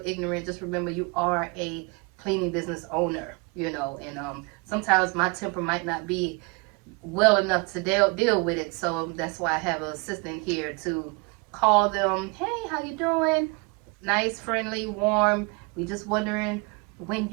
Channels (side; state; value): left; quieter; 30.0 dB